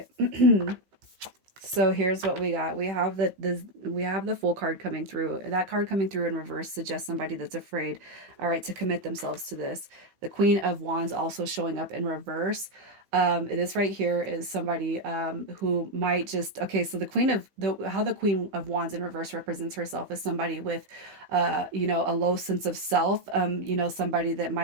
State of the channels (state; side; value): late; left; 15 ms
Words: So here's what we got. We have the Fool card coming through. That card coming through in reverse suggests somebody that's afraid, all right, to commit themselves to this. The Queen of Wands also showing up in reverse. This right here is somebody who might just, okay, so how the Queen of Wands in reverse represents herself is somebody with a low sense of self, somebody that